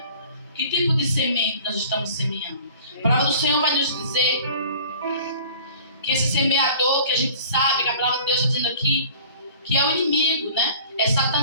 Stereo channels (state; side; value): inverted; both; correlation -0.47